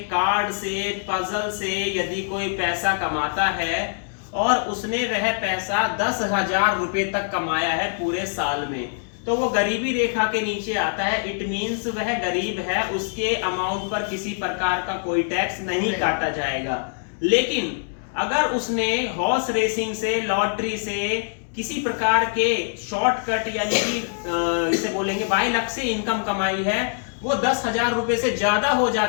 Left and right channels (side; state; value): right; silent; digital silence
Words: कार्ड से, पजल से यदि कोई पैसा कमाता है और उसने वह पैसा 10,000 रुपए तक कमाया है पूरे साल में, तो वो गरीबी रेखा के नीचे आता है। इट मींस वह गरीब है, उसके अमाउंट पर किसी प्रकार का कोई टैक्स नहीं काटा जाएगा। लेकिन अगर उसने हॉर्स रेसिंग से, लॉटरी से, किसी प्रकार के शॉर्टकट यानी कि इसे बोलेंगे बाय लक से इनकम कमाई है, वो 10,000 रुपए से ज्यादा हो